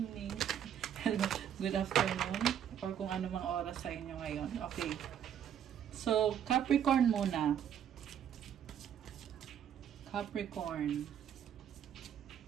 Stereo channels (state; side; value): quieter; left; 9.3 dB